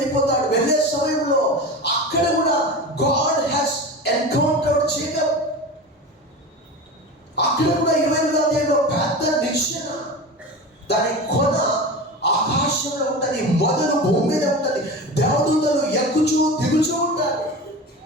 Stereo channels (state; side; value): normal; both; correlation 0.29